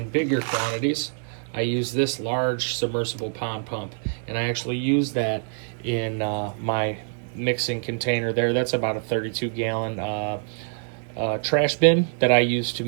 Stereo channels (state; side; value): silent; left; 62 dB below the other